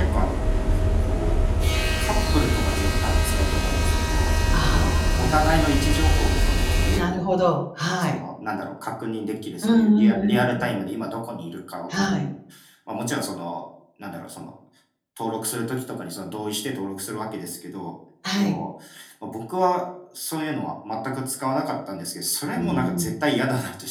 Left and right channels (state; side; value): identical; both; correlation 1.00